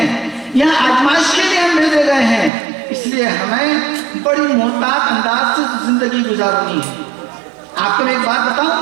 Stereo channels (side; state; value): left; drops out; at 2.5 s